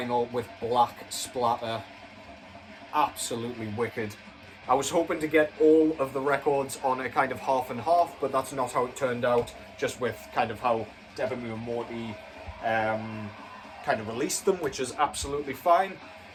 with black splatter. Absolutely wicked. I was hoping to get all of the records on a kind of half and half, but that's not how it turned out, just with kind of how Deborah and Morty kind of released them, which is absolutely fine.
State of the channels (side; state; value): both; identical; correlation 1.00